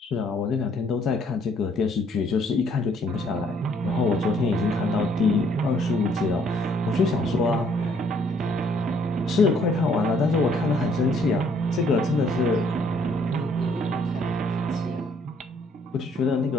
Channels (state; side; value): normal; both; correlation 0.65